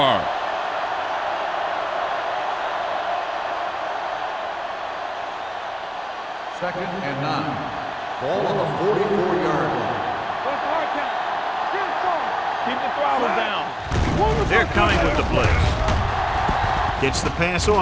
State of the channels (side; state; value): both; identical; correlation 1.00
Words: Second and 9. Ball on the 44-yard line. Keep the throttle down. They're coming with the blitz. Gets the pass